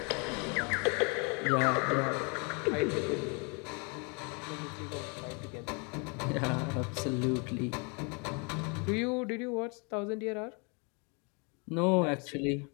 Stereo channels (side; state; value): right; quieter; 33.6 dB